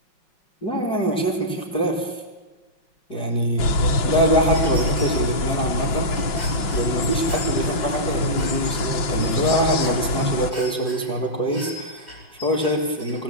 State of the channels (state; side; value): late; right; 5.8 ms